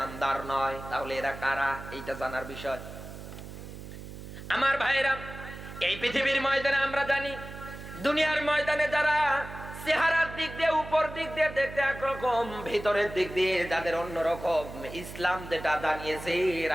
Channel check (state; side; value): noise; right; hum, 12 dB below the sound